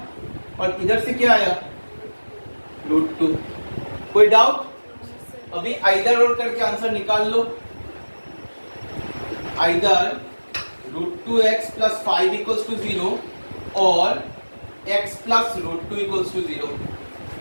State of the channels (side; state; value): both; inverted; correlation -1.00